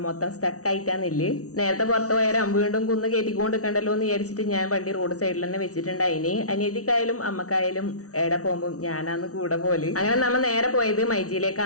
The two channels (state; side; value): late; right; 0.66 ms